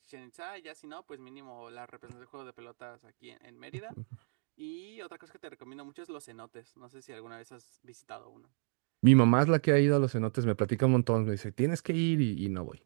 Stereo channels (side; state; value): left; silent; 56 dB below the other